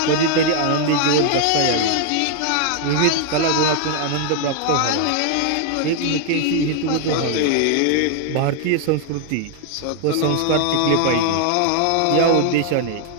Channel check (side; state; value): both; different; correlation 0.00